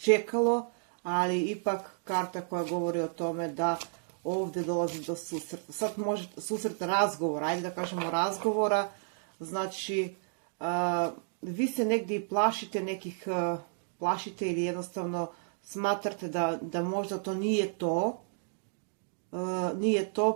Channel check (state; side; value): silent; left; digital silence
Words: ali ipak karta koja govori o tome da ovdje dolazi do susreta. Sad može susret razgovora, ajde da kažemo razgovora, znači vi se negdje i plašite ili jednostavno smatrate da možda to nije